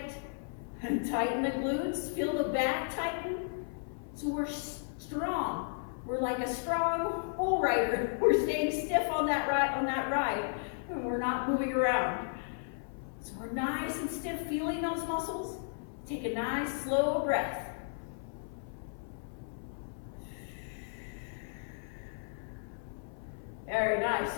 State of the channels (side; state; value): right; silent; 55 dB below the other